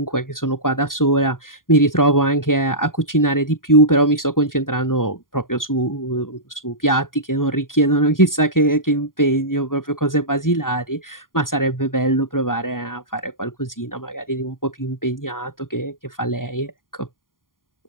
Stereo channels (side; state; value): right; late; 0.90 ms